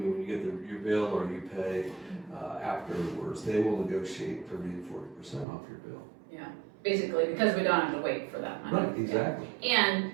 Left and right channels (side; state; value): left; drops out; at 5.5 s